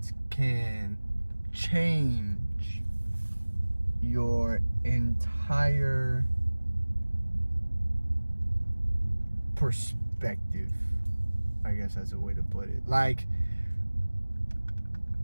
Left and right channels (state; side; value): inverted; both; correlation -1.00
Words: can change your entire perspective. I guess that's a way to put it. Like,